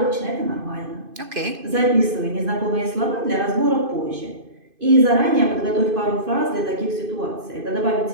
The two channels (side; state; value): left; late; 2.5 ms